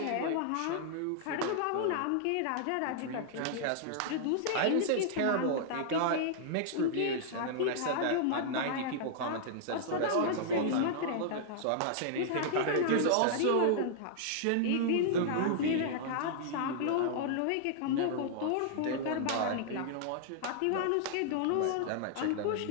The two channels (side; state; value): both; different; correlation -0.01